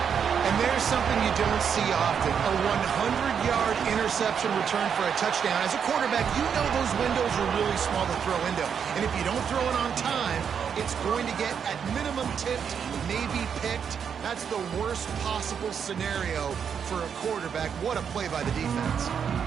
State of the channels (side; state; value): left; quieter; 7.3 dB